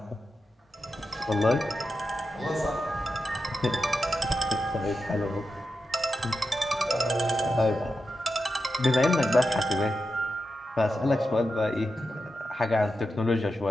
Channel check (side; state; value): both; normal; correlation 0.89